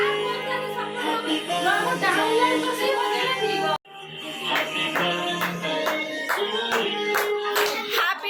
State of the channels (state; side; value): identical; both; correlation 1.00